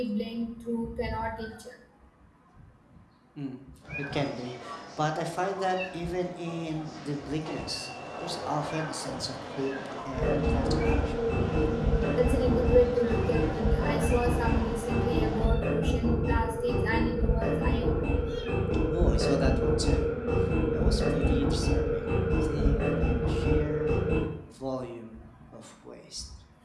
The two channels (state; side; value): identical; both; correlation 1.00